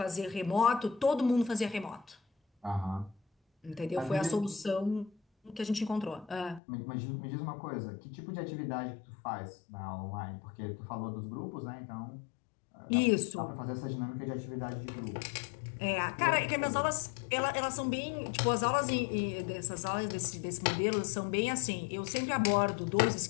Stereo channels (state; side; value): drops out; right; at 6.6 s